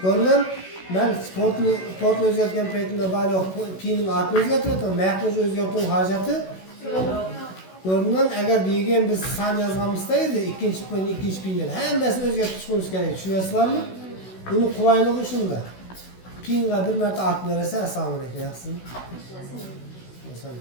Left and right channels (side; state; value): right; late; 16 ms